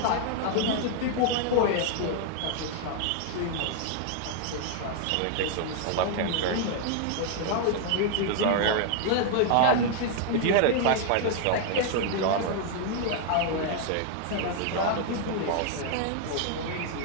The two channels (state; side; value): different; both; correlation 0.00